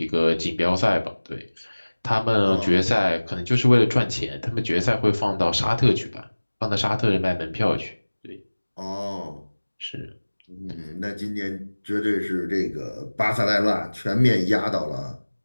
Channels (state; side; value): inverted; both; correlation -1.00